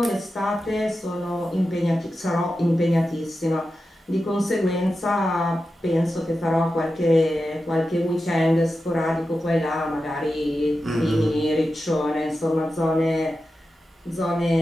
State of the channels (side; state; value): both; normal; correlation 0.91